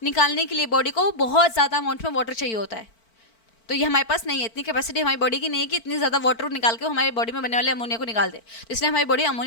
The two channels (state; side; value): late; right; 4.5 ms